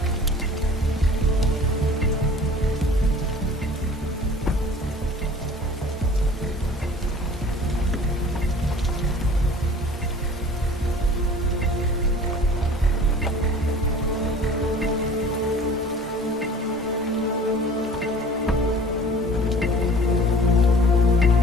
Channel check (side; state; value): both; normal; correlation 0.46